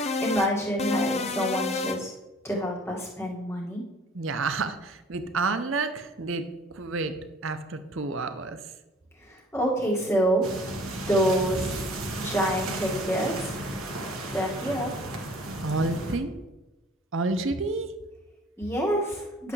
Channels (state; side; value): normal; both; correlation 0.52